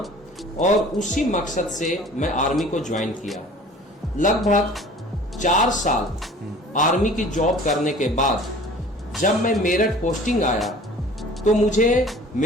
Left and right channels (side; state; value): both; normal; correlation 0.46